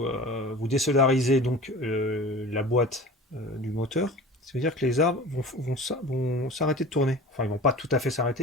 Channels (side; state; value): both; normal; correlation 0.38